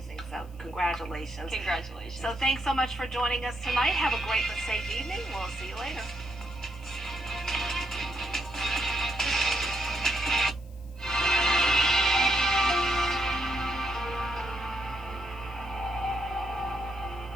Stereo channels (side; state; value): left; noise; hiss, 29 dB below the sound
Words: So congratulations. Congratulations. So thanks so much for joining us tonight. Have a great and safe evening. We'll see you later.